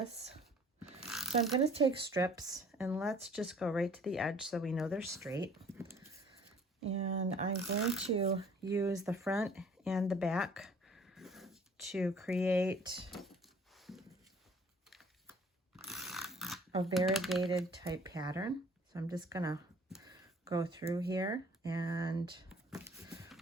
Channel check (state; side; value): normal; both; correlation 0.54